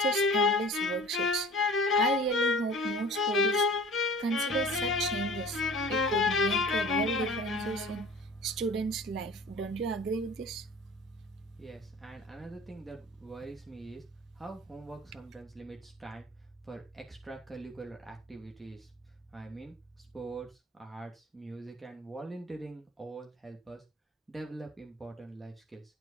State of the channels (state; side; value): normal; both; correlation 0.43